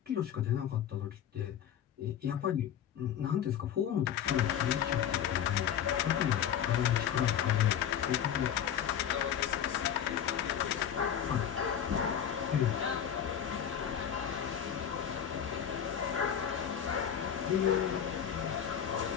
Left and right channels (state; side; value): quieter; right; 9.3 dB